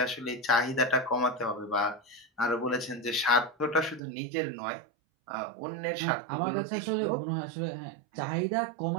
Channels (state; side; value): drops out; left; at 4.0 s